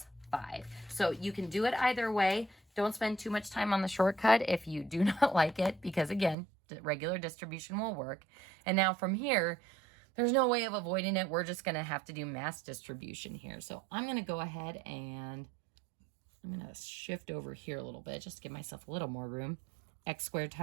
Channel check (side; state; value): left; drops out; at 6.4 s